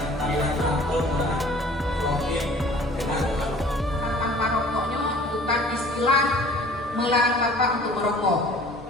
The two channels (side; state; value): both; normal; correlation 0.49